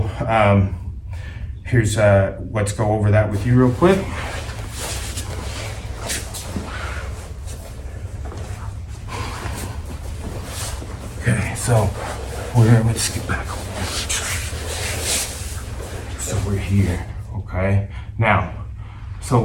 here's, let's go over that with you real quick. Okay, so let's get back over. So we're here, okay? Now, so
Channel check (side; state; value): both; identical; correlation 1.00